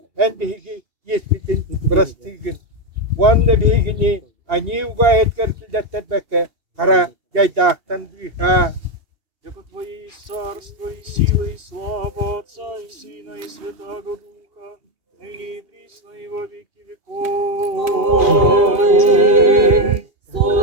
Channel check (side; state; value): left; late; 2.8 ms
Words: En bir heki yespitin brastığın. Bu anda bir hekini ani ugayet kartıldattar beke, kara yaydağtan bir ha. Яко Твое есть царство, и сила, и слава Отца, и Сына, и Святаго Духа, ныне и присно, и во веки веков. Аминь.